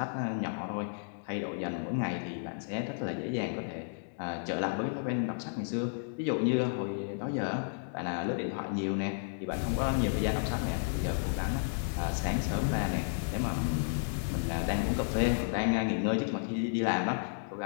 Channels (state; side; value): silent; right; digital silence